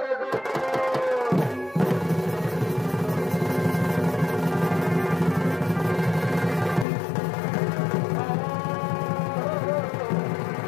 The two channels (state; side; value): drops out; right; at 6.9 s